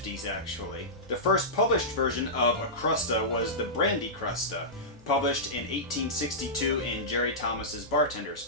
actually. The first published version of a Crusta was the Brandy Crusta, published in 1862 in Jerry Thomas's Bartender's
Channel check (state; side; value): normal; both; correlation -0.14